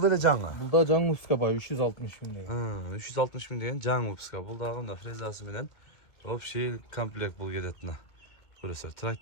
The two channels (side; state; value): right; late; 2.3 ms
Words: деле жаңы. Бул да жаңы выпуска бар, 360 000 деген. 360 000 деген жаңы выпуска. Бул дагы мына фрезасы менен общий комплект бул кетет мына. Көрөсүздөр.